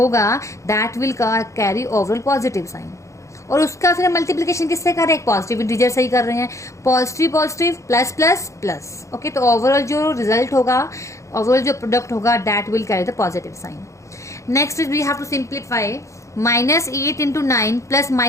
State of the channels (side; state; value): right; late; 0.15 ms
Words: that will carry overall positive sign. और उसका फिर मल्टीप्लिकेशन किससे कर रहे हैं? पॉजिटिव इंटीजर से ही कर रहे हैं। Positive positive plus plus plus. Okay, तो ओवरऑल जो रिजल्ट होगा, ओवरऑल जो प्रोडक्ट होगा that will carry the positive sign. Next is we have to simplify -8 into 9 plus